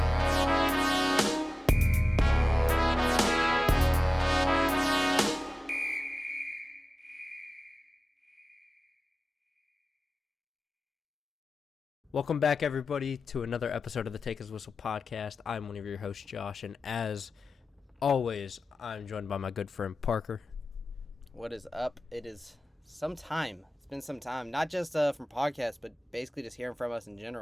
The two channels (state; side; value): normal; both; correlation 0.96